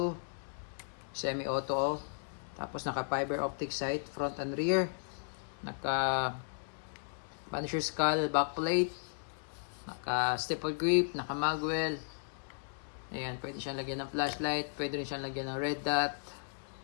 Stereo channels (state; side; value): silent; right; digital silence